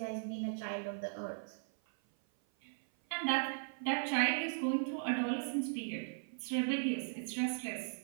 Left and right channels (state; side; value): silent; left; 53 dB below the other